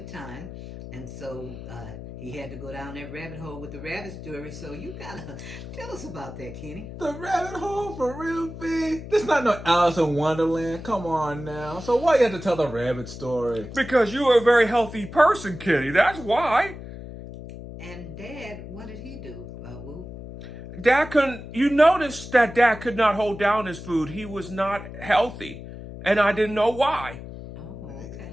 time, and so he had to go down that rabbit hole with the rabbit story. So you gotta tell us about that, Kenny. The rabbit hole for real, big. This not no Alice in Wonderland. Come on now. So why you have to tell the rabbit story? Because you are a very healthy person, Kitty. That's why. And Dad, what did he do? Woo? Dad couldn't. You noticed that Dad could not hold down his food. He was not healthy, and I didn't know why. Oh, okay.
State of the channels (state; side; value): noise; left; hum, 12 dB below the sound